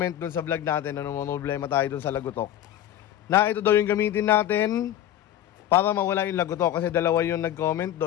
dun sa vlog natin na problema tayo dun sa lagutok. Na ito daw yung gamitin natin para mawala yung lagutok, kasi dalawa yung nag-comment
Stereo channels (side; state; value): right; quieter; 11.8 dB